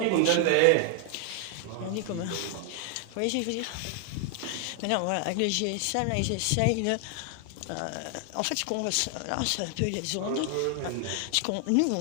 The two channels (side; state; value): both; different; correlation 0.00